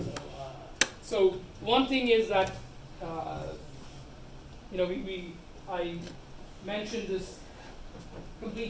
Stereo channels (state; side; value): identical; both; correlation 1.00